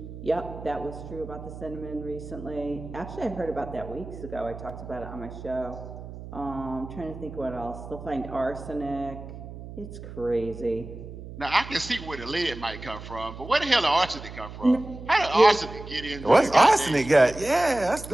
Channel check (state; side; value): noise; right; hum, 12 dB below the sound